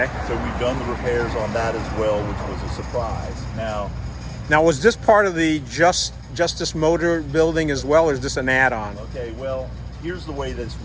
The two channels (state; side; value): identical; both; correlation 1.00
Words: So we've done the repairs on that as well, which was a surprise. Now, was this part of the Justice Motor building as well, or is this an add-on? Okay, well, here's the way this